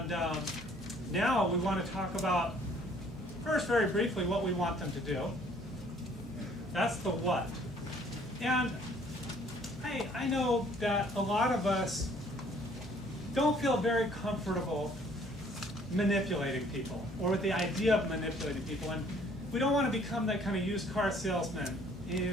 now we want to talk about, first very briefly, what we want them to do. That's the what. And I know that a lot of us don't feel very comfortable manipulating people or with the idea of manipulating people. And we don't want to become that kind of used car salesman.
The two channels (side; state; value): both; normal; correlation 0.59